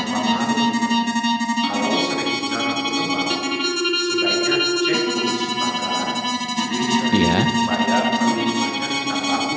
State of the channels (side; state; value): both; identical; correlation 1.00